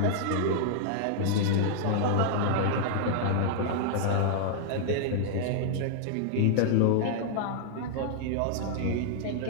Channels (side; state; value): both; different; correlation -0.01